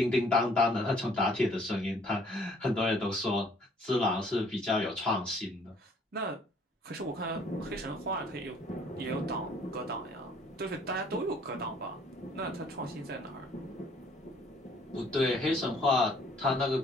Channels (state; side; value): normal; both; correlation 0.59